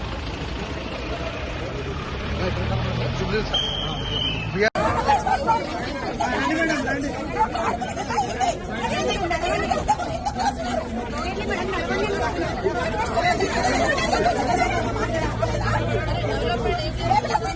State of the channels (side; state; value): both; identical; correlation 1.00